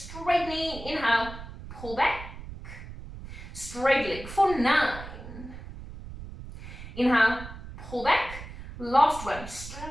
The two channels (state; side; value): noise; right; rumble, 12 dB below the sound